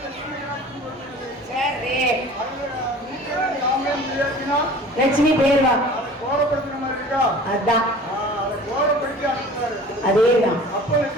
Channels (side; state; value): both; normal; correlation 0.43